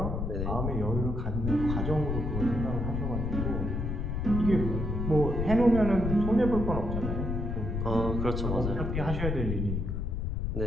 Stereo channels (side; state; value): left; noise; rumble, 1 dB below the sound